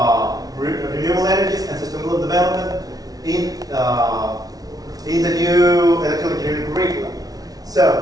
renewable energies and sustainable development in the new electrical engineering curriculum.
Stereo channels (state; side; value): late; left; 0.18 ms